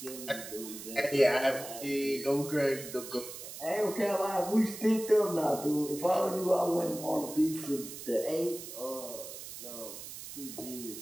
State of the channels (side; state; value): right; noise; hiss, 11 dB below the sound